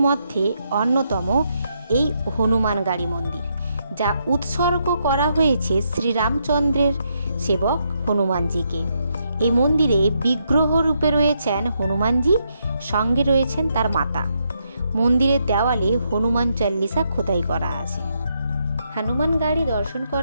মধ্যে অন্যতম এই হনুমানগাড়ি মন্দির, যা উৎসর্গ করা হয়েছে শ্রীরামচন্দ্রের সেবক হনুমানজিকে। এই মন্দিরে বিগ্রহ রূপে রয়েছেন হনুমানজি, সঙ্গে রয়েছেন তার মাতা। মন্দিরের দেওয়ালে হনুমান চল্লিশা খোদাই করা আছে। হনুমান গাড়ি দর্শন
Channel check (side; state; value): both; inverted; correlation -0.78